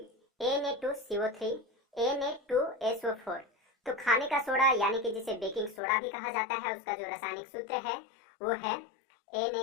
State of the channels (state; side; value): drops out; right; at 5.8 s